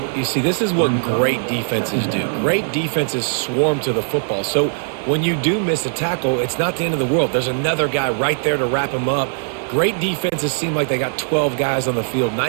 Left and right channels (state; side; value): silent; left; 66 dB below the other